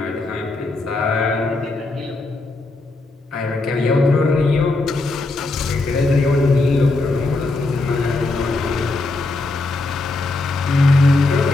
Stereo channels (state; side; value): quieter; right; 3.2 dB